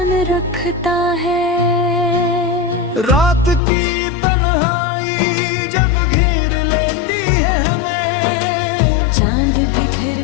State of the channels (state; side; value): drops out; right; at 3.6 s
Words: रखता है। रात की तन्हाई जब घेर लेती है हमें, चांद भी फिर